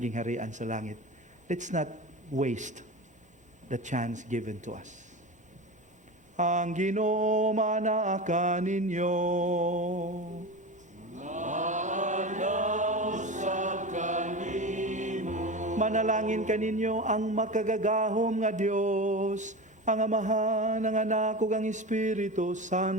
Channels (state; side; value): normal; both; correlation 0.26